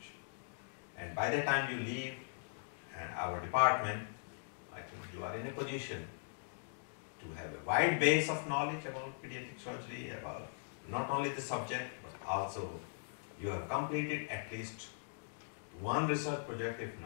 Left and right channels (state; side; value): silent; right; digital silence